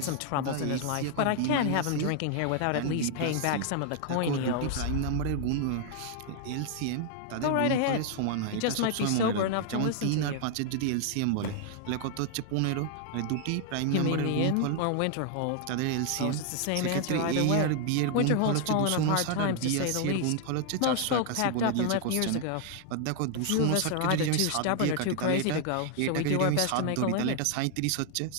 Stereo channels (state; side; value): different; both; correlation 0.00